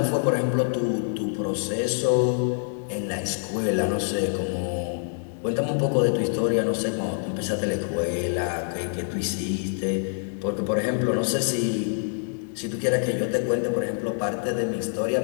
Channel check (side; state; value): right; silent; 61 dB below the other